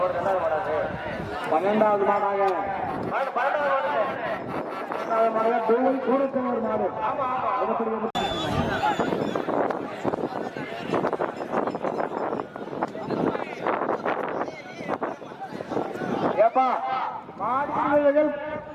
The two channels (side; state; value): both; identical; correlation 1.00